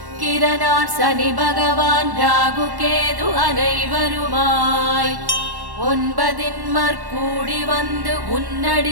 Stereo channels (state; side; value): late; left; 1.1 ms